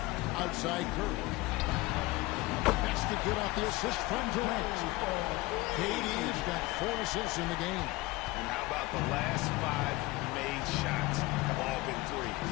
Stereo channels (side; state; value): right; quieter; 20.6 dB